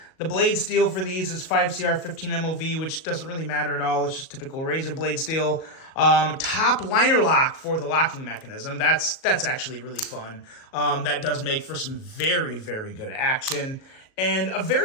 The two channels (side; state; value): right; late; 37 ms